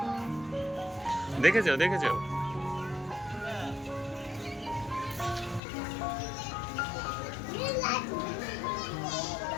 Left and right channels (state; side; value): drops out; right; at 5.6 s